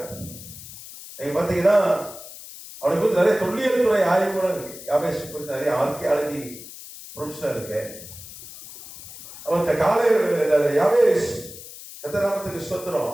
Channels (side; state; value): left; noise; hiss, 15 dB below the sound